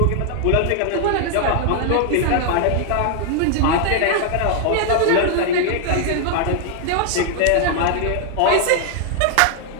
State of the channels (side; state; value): both; different; correlation 0.00